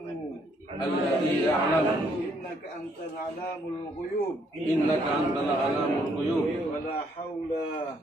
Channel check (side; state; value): both; normal; correlation 0.69